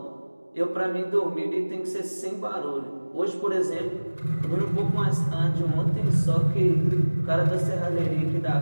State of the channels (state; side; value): inverted; both; correlation -1.00